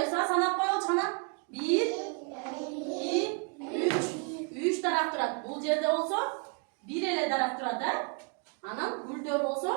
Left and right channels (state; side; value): quieter; left; 37.4 dB